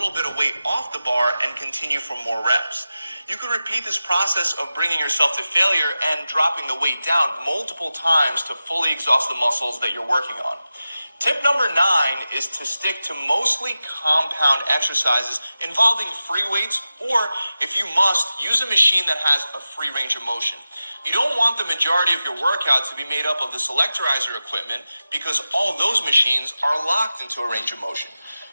bit of weight off the bar, and continue for more reps. You can repeat this process of bringing yourself to failure and dropping the weight down multiple times to fully exhaust the muscles that you're working on. Tip number 9 is to stick to mostly compound exercises involving free weights, or if you must, use a machine that has a free range of motion. You don't want the majority of your workout to be made up of the selectorizer equipment because all those machines are locked into a range of motion.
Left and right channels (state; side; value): inverted; both; correlation -0.93